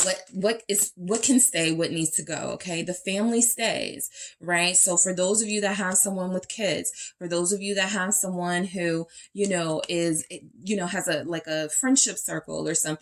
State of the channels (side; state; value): both; identical; correlation 1.00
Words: What can stay, what needs to go. Okay. The family stays, right? So for those of you that have someone with kids, for those of you that have someone who, has a friendship circle or